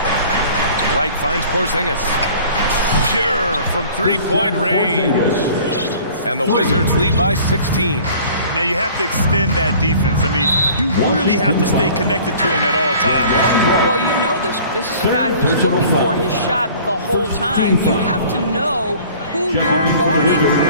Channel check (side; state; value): both; inverted; correlation -0.48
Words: Wright finds Porzingis. Pure from 3-point range. And the Wizards lead by 16. Now you have to extend that defense. I mean, you really have to stay connected to him at all times. Well, you know this. This is a guy who's looking for his shot the whole time. You have to know who you're guarding.